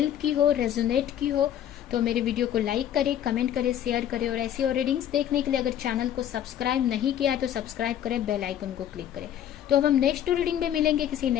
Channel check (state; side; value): quieter; right; 10.6 dB